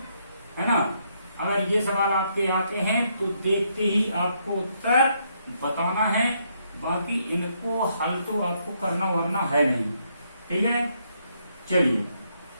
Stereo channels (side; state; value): both; inverted; correlation -0.74